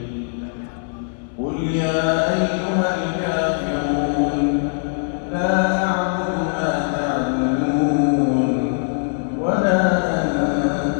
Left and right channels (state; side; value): silent; right; 59 dB below the other